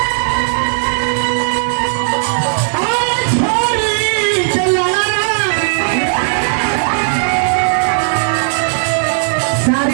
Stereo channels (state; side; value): silent; left; digital silence